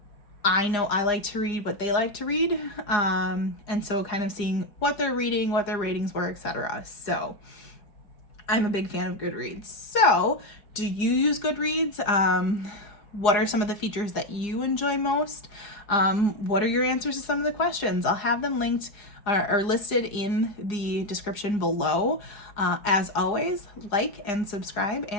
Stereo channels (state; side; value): late; right; 4.9 ms